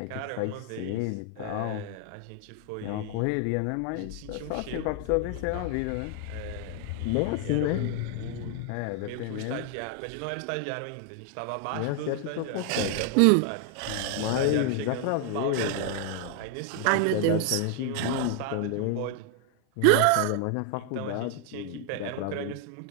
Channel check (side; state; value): both; different; correlation 0.00